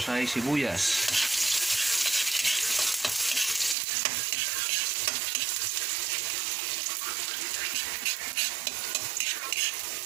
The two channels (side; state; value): left; drops out; at 3.8 s